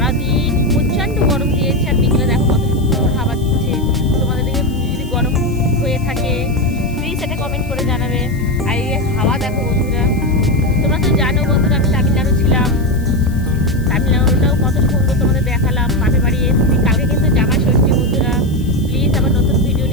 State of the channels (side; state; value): left; noise; hiss, 23 dB below the sound